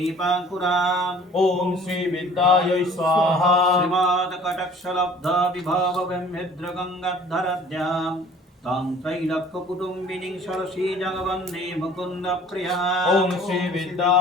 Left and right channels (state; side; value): normal; both; correlation 0.51